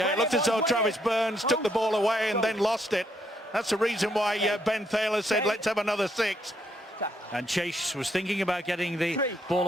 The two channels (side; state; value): both; normal; correlation 0.74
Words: it looked as though Travis Burns took the ball away and then lost it. That's the reason why Ben Thaler said, let's have another 6. And Chase was thinking about getting the ball